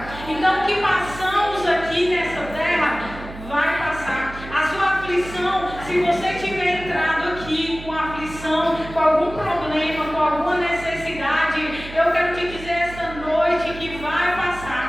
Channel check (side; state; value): right; noise; hum, 13 dB below the sound